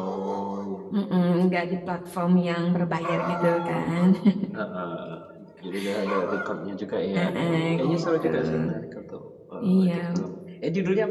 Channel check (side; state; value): both; identical; correlation 1.00